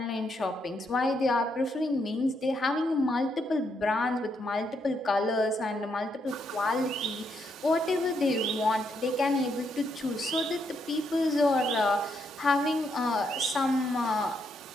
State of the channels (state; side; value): normal; both; correlation 0.77